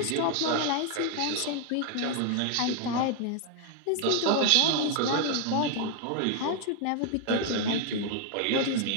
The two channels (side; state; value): both; different; correlation 0.00